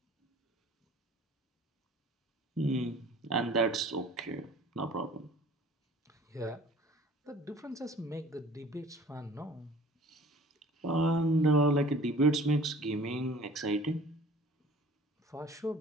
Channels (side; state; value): both; normal; correlation 0.48